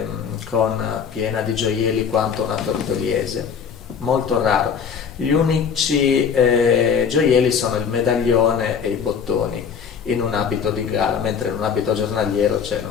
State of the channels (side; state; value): right; quieter; 6.8 dB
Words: piena di gioielli quanto una tortoliese, molto raro. Gli unici gioielli sono il medaglione e i bottoni in un abito di gala, mentre in un abito giornaliero